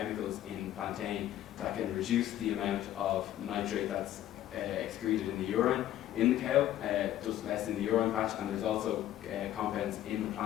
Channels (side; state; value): right; quieter; 12.7 dB